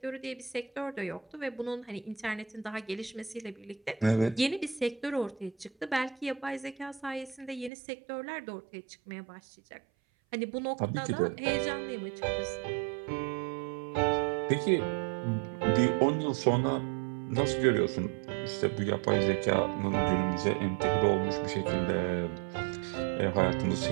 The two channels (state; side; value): drops out; left; at 7.7 s